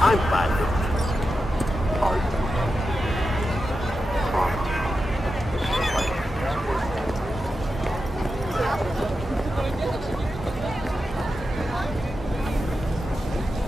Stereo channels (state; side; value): normal; both; correlation 0.90